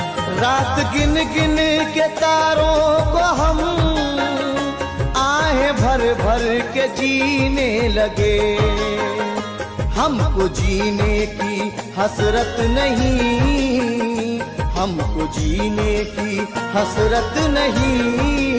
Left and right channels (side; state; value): both; identical; correlation 1.00